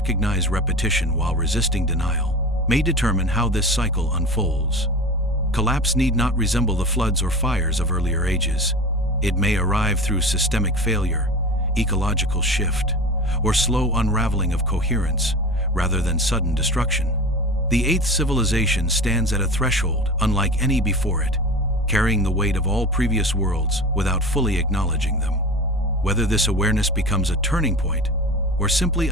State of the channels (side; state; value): both; normal; correlation 0.32